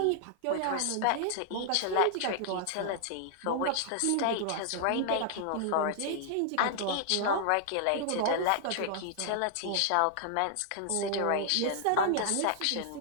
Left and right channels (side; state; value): both; different; correlation -0.01